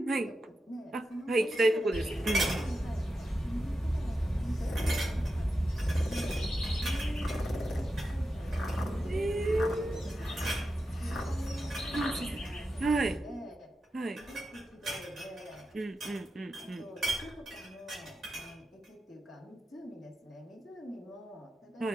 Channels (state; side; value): normal; both; correlation 0.90